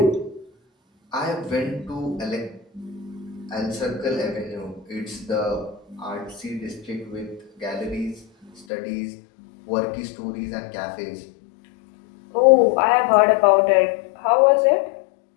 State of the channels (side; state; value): right; drops out; at 8.7 s